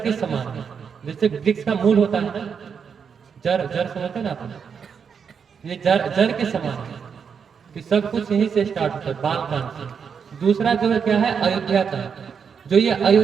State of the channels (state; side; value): quieter; left; 6.6 dB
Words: समान है। जैसे वृक्ष का मूल होता है ना, जड़, जड़ समझते ना आप, ये जड़ के समान है कि सब कुछ यहीं से स्टार्ट होता है, बाल कांड से। दूसरा जो है क्या है? अयोध्या कांड। जो ये